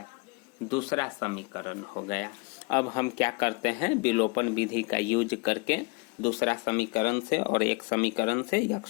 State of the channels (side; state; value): right; quieter; 28.1 dB